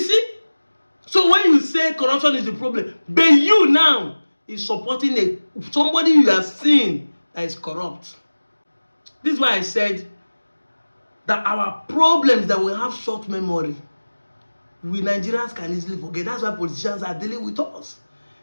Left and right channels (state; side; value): inverted; both; correlation -1.00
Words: So when you say corruption is the problem, but you now is supporting somebody you are seeing that is corrupt. This is why I said that our problems that we have short memory, we Nigerians can easily forget. That's why politicians are dealing with us.